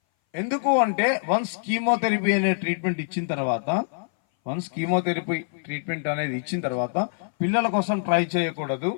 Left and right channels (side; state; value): right; silent; 59 dB below the other